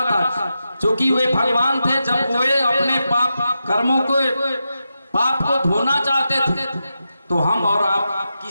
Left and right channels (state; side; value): inverted; both; correlation -0.88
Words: था, क्योंकि वे भगवान थे, जब वे अपने पाप कर्मों को पाप को धोना चाहते थे तो हम और आप